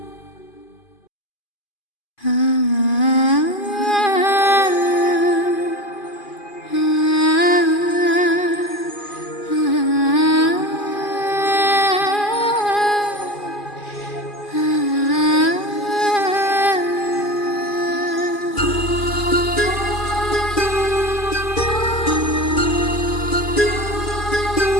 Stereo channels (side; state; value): right; late; 2.4 ms